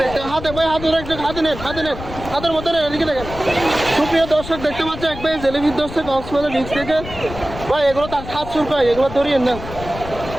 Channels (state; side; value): noise; left; rumble, 11 dB below the sound